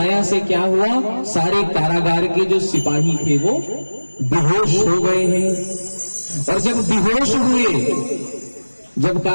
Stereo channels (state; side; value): inverted; both; correlation -1.00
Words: से क्या हुआ, सारे कारागार के जो सिपाही थे वो बेहोश हो गए हैं। और जब बेहोश हुए, जब